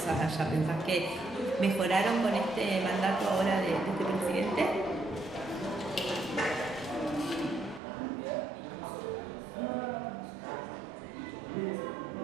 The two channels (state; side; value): drops out; left; at 7.8 s